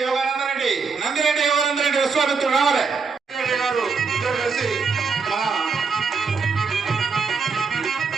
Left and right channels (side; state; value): left; quieter; 5.1 dB